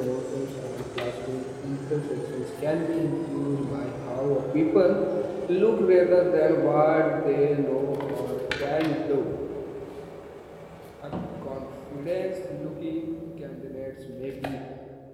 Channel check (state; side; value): identical; both; correlation 1.00